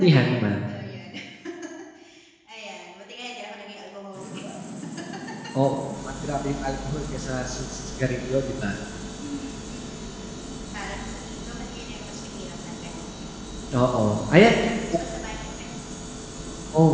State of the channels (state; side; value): identical; both; correlation 1.00